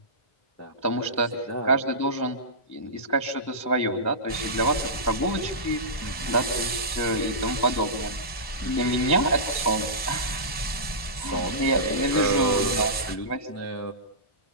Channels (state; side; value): late; right; 1.0 ms